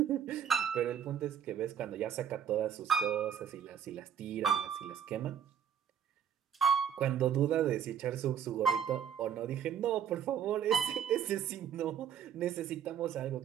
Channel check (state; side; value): quieter; left; 8.6 dB